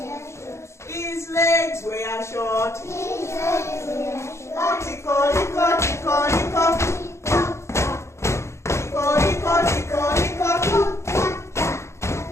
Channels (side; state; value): right; late; 0.13 ms